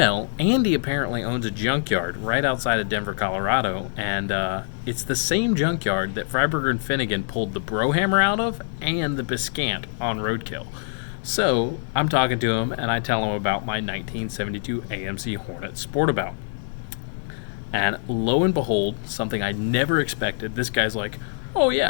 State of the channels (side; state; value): right; silent; digital silence